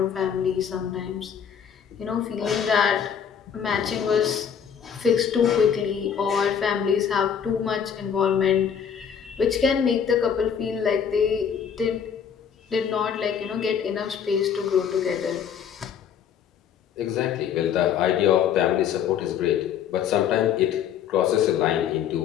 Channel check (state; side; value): quieter; right; 7.9 dB